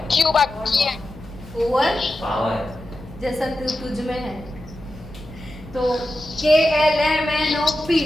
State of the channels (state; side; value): noise; left; hum, 18 dB below the sound